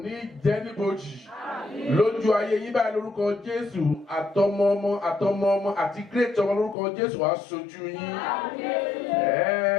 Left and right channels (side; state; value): right; drops out; at 6.8 s